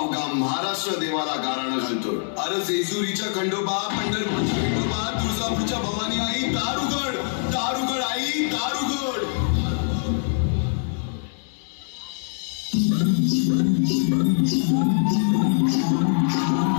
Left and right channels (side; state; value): right; silent; digital silence